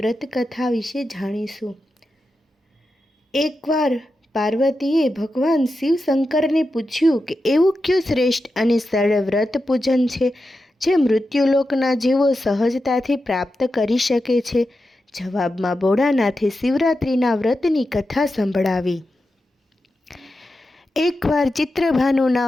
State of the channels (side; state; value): both; normal; correlation 0.90